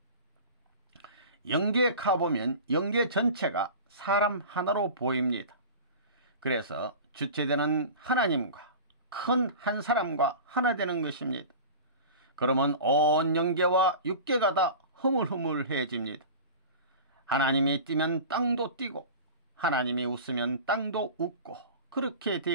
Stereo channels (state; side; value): inverted; both; correlation -0.35